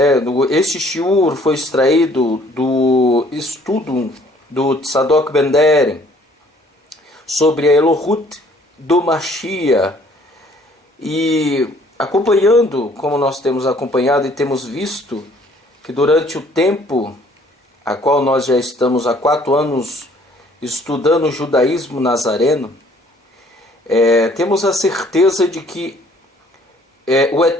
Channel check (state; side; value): normal; both; correlation 0.59